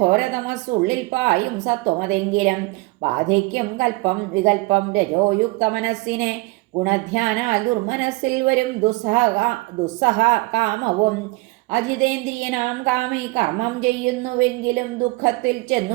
പായും സത്വമതെങ്കിലും ബാധിക്കും കൽപ്പം വികൽപ്പം രജോയുക്ത മനസ്സിനെ. ഗുണധ്യാനാൽ ദുർമനസ്സിൽ വരും ദുസ്സഹ കാമവും. അജിതേന്ദ്രിയനാം കാമി കർമ്മം ചെയ്യുന്നുവെങ്കിലും ദുഃഖത്തിൽ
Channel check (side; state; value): left; quieter; 23.6 dB